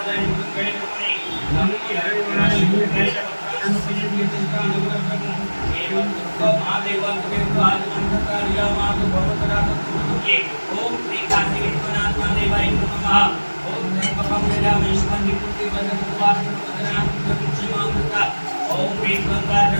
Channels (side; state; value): both; inverted; correlation -1.00